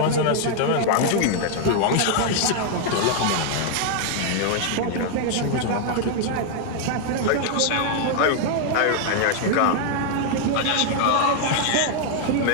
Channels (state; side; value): different; both; correlation 0.00